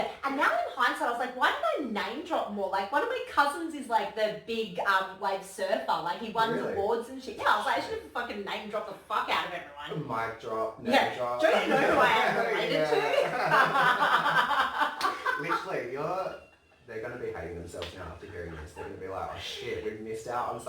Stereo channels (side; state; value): both; identical; correlation 1.00